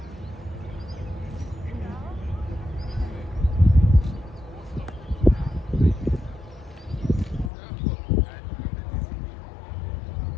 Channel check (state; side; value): drops out; right; at 7.5 s